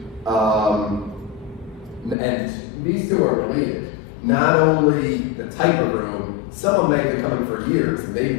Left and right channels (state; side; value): drops out; right; at 2.1 s